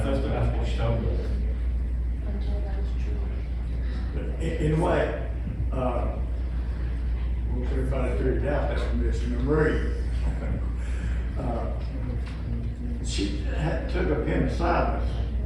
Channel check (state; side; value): identical; both; correlation 1.00